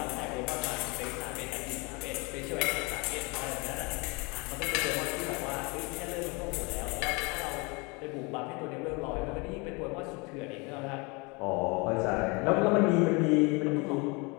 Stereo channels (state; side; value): quieter; right; 28.8 dB